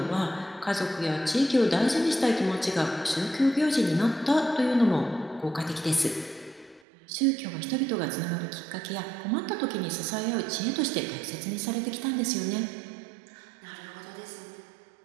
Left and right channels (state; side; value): drops out; left; at 6.8 s